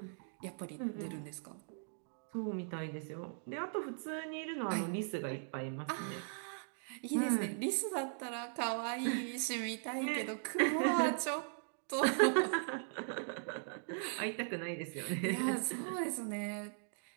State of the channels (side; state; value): left; silent; digital silence